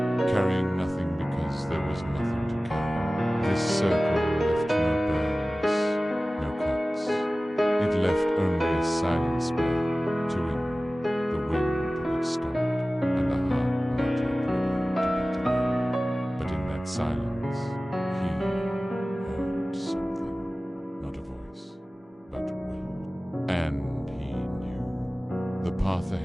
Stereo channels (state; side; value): normal; both; correlation 0.97